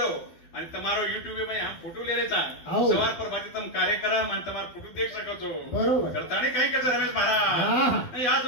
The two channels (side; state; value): right; late; 12 ms